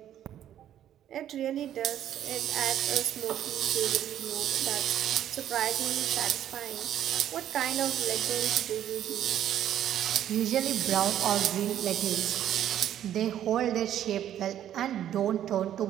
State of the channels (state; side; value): quieter; left; 11.1 dB